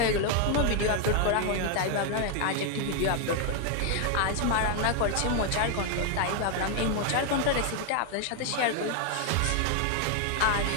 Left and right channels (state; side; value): different; both; correlation 0.00